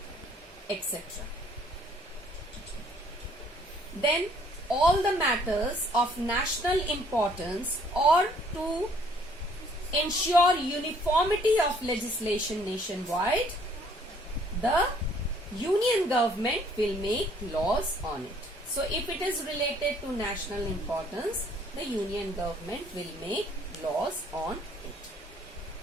etc. Then all the matters of national importance or to ensure uniformity of legislation nationwide, the union government will make laws on it. So if it is related to national importance, the union government will make laws on it.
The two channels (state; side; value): normal; both; correlation 0.61